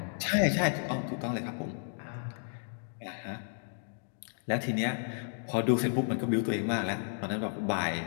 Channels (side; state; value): right; silent; digital silence